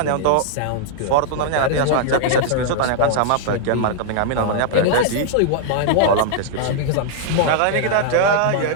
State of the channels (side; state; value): both; different; correlation -0.01